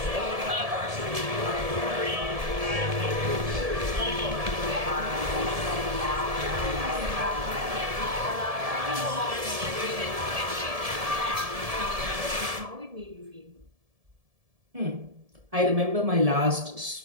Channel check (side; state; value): left; late; 1.7 ms